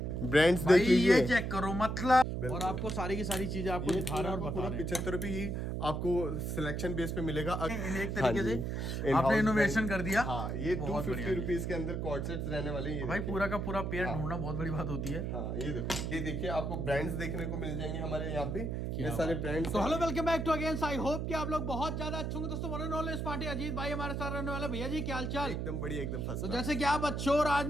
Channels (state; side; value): noise; right; hum, 2 dB below the sound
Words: ब्रांड्स देख लीजिए, ये चेक करो मतलब। और आपको सारी की सारी चीजें आपको दिखा रहे हैं और बता रहे हैं। 75 रुपये ही आपको सिलेक्शन बेस पे मिलेगा। एक तरीके से आपने इनोवेशन कर दिया। हाँ, ये 250 रुपीज के अंदर कॉर्ड सेट्स रहने वाले हैं। भाई पूरा का पूरा पेयर ढूंढना बहुत बड़ी बात होती है। हाँ, ये देखिए आपको ब्रांड्स देखने को मिल जाएंगे हमारे यहाँ पे, ये सारे ब्रांड्स। तो hello welcome back to again. I hope कि आप लोग बहुत ज्यादा अच्छे होंगे दोस्तों। वन नॉलेज पार्टी अजीत भाई हमारे साथ रहने वाले। भैया जी क्या हालचाल? एकदम बढ़िया, एकदम फर्स्ट। तो जैसे कि आप अच्छे हो और आज